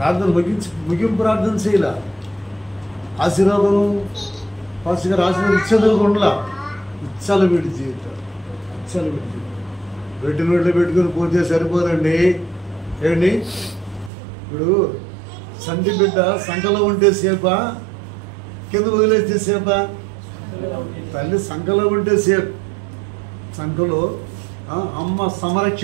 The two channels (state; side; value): drops out; left; at 14.1 s